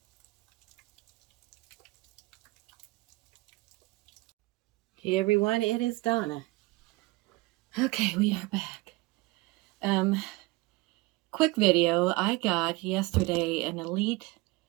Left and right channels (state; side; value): quieter; left; 22.1 dB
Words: Hey everyone, it is Donna. Okay, we are back. Quick video. I got yesterday an elite